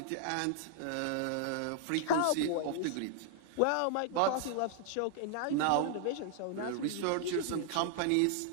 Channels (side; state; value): both; different; correlation -0.01